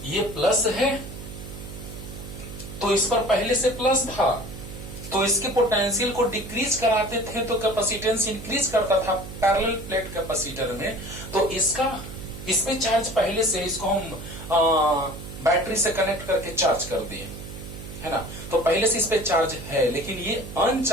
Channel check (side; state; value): right; noise; hum, 12 dB below the sound